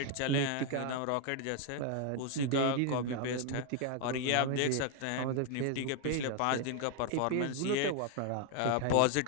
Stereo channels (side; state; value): both; different; correlation 0.01